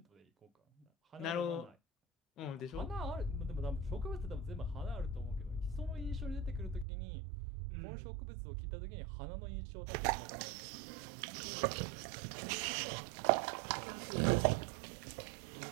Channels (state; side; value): drops out; left; at 6.9 s